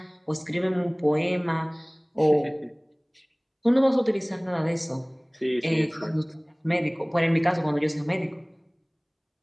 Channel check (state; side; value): identical; both; correlation 1.00